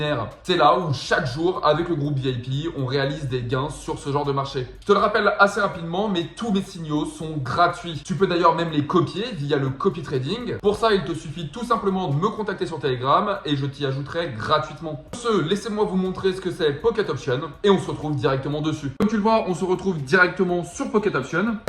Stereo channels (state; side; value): identical; both; correlation 1.00